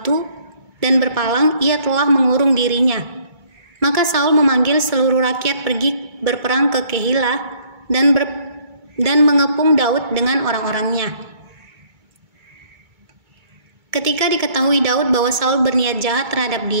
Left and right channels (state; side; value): late; left; 2.3 ms